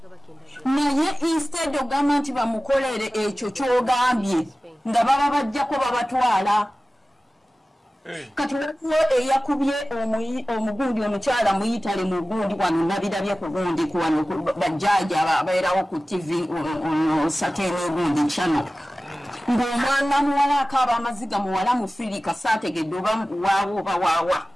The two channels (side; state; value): both; normal; correlation 0.96